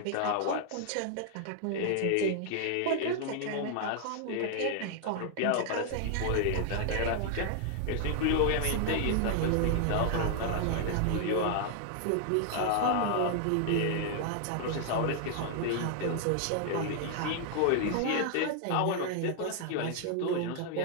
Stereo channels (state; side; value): different; both; correlation 0.00